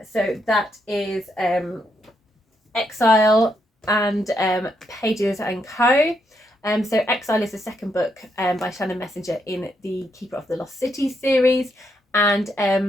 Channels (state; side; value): normal; both; correlation 0.78